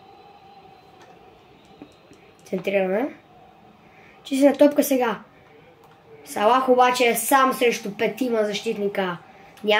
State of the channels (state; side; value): identical; both; correlation 1.00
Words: Центрираме. Чистена топка сега. Салах обаче е сам срещу петима защитника.